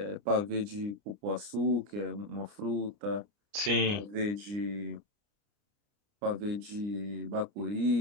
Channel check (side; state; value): left; late; 29 ms